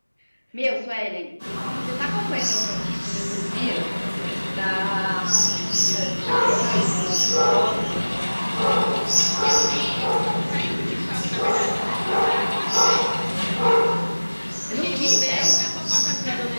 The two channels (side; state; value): both; inverted; correlation -1.00